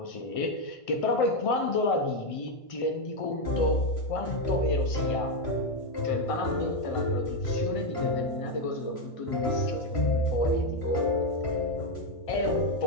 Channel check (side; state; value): right; late; 1.5 ms